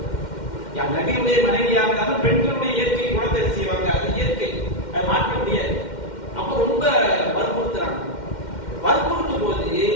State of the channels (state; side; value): late; right; 2.1 ms